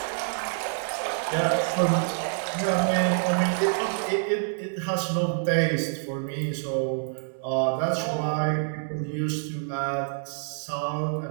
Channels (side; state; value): left; silent; 60 dB below the other